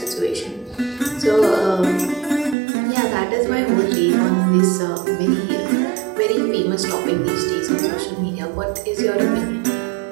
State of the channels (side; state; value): left; drops out; at 2.6 s